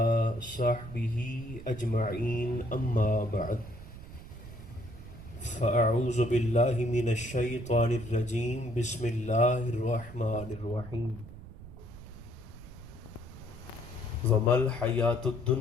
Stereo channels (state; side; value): noise; right; rumble, 15 dB below the sound